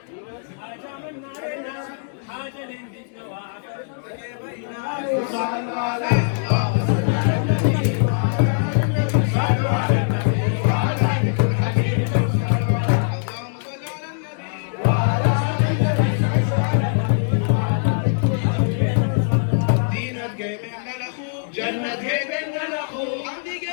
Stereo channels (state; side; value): silent; right; digital silence